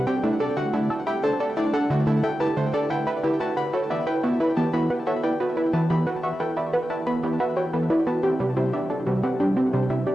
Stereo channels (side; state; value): both; normal; correlation 0.92